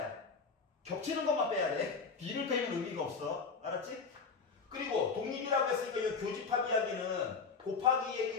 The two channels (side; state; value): right; quieter; 5.1 dB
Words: 겹치는 것만 빼야 돼. B를 빼면 의미가 없어. 알았지? 그리고 독립이라고 했으니까 이 교집합 이야기는 곱하기